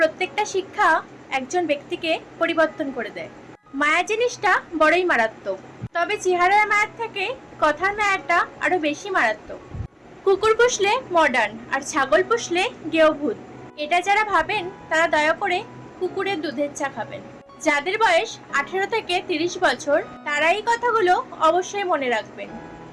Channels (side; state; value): both; identical; correlation 1.00